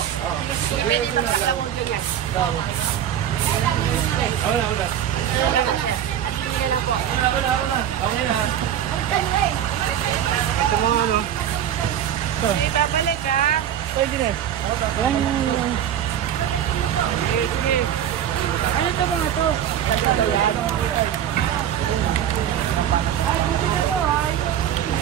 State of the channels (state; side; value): quieter; left; 10.1 dB